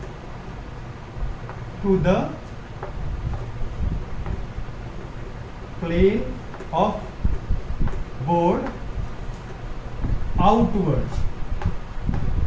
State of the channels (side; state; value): both; identical; correlation 1.00